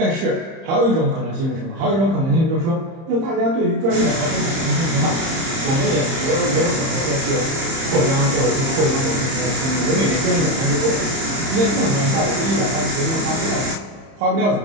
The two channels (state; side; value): late; left; 30 ms